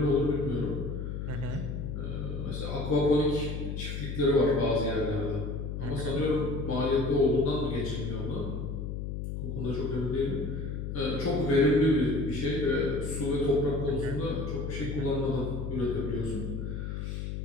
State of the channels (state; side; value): noise; left; hum, 4 dB below the sound